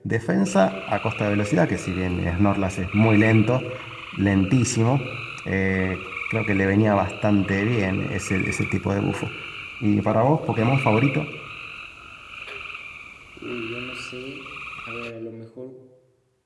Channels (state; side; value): identical; both; correlation 1.00